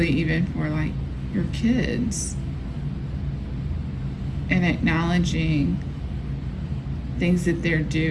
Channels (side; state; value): both; identical; correlation 1.00